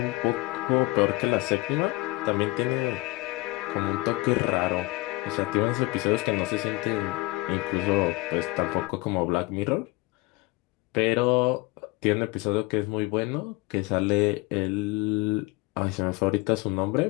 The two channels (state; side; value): quieter; right; 22.5 dB